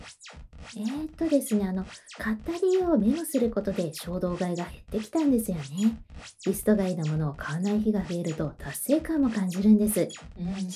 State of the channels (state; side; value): identical; both; correlation 1.00